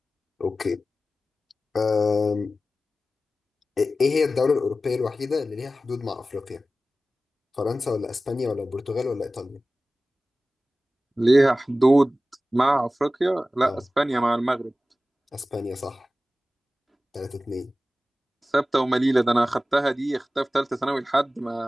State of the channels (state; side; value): normal; both; correlation 0.95